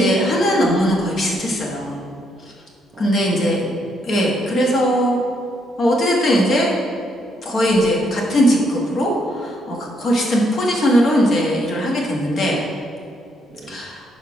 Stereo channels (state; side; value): normal; both; correlation 0.74